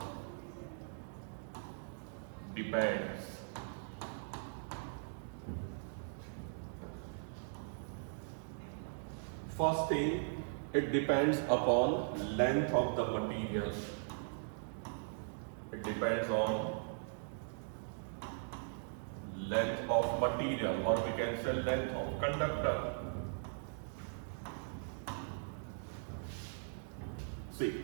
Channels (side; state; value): left; silent; digital silence